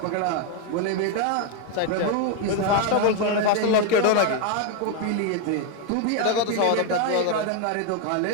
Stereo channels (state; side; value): different; both; correlation 0.01